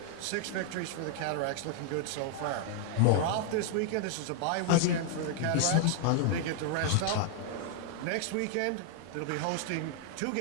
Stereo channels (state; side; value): different; both; correlation -0.01